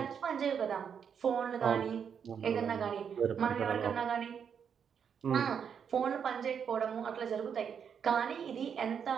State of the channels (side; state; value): left; quieter; 7.3 dB